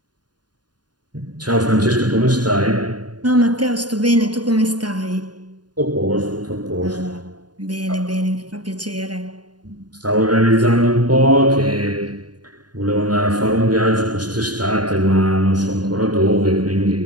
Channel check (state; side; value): late; left; 0.70 ms